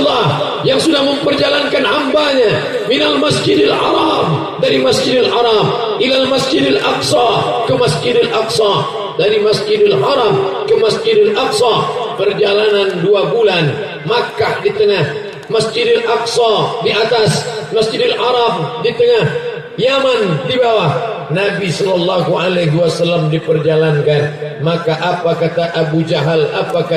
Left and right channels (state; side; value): identical; both; correlation 1.00